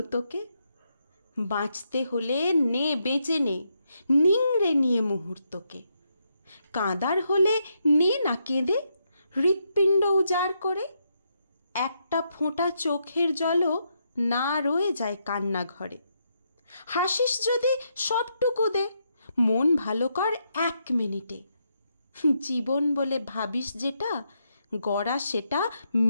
তোকে? বাঁচতে হলে নে বেঁচে নে, নিংড়ে নিয়ে মুহূর্তকে। কাঁদার হলে নে না কেঁদে, হৃৎপিণ্ড উজাড় করে। একটা ফোঁটা চোখের জলও না রয়ে যায় কান্না ঘরে। হাসিস যদি সবটুকু দে, মন ভালো কর 1 মিনিটে। জীবন বলে ভাবিস যেটা, গড়া সেটা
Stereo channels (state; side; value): inverted; both; correlation -0.80